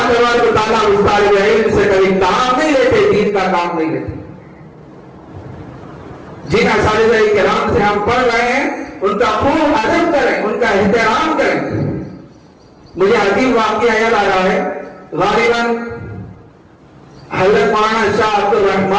تبارک و تعالیٰ اس طالب علم سے کبھی کام نہیں لیتے، دین کا کام نہیں لیتے. جن اساتذہ کرام سے ہم پڑھ رہے ہیں ان کا خوب ادب کریں، ان کا احترام کریں. مجھے عجیب واقعہ یاد آ رہا ہے. غالباً حضرت مولانا شاہ عبد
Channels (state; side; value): identical; both; correlation 1.00